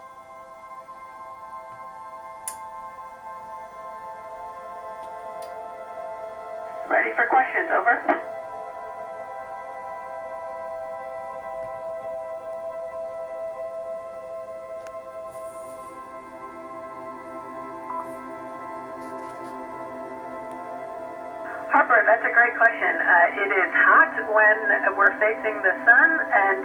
Ready for questions. Over. Harper, that's a great question. It is hot when we're facing the sun, and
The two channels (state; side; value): identical; both; correlation 1.00